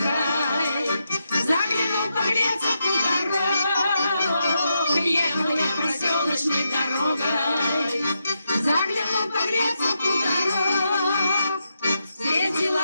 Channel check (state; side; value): inverted; both; correlation -0.84